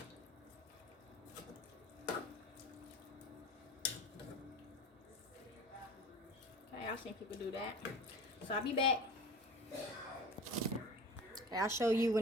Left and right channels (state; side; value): normal; both; correlation 0.36